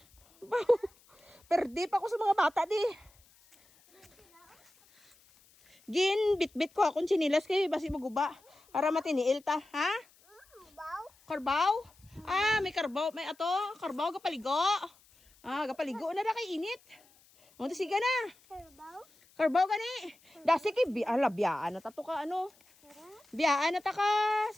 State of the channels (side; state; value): left; noise; hiss, 30 dB below the sound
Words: Baw. Perde pa ako sa mga bata di. Gin, bit-bit ko akong chinilas kayo, basi maguba. Para matiniil ta, ha? Karbaw? May karbaw, may ato, karbaw gapaligo. Gapaligo na kay init. O, sige na. Karbaw gani. Dasi kay biyaan na tato ka ano. Biyaan na ta ka,